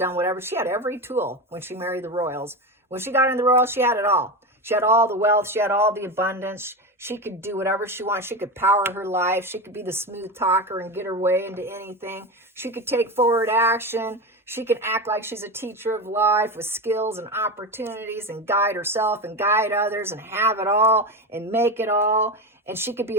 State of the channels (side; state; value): both; normal; correlation 0.20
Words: whatever. She had every tool when she married the royals. When she got in the royals, she had it all. She had all the wealth. She had all the abundance. She could do whatever she wanted. She could power her life. She could be the smooth talker and get her way into anything. She could take forward action. She could act like she's a teacher of life with skills and opportunities and guide herself and guide others and have it all and make it all. And she could be